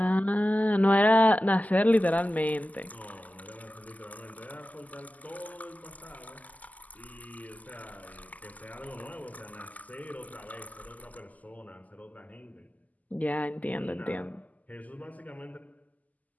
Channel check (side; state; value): right; late; 0.078 ms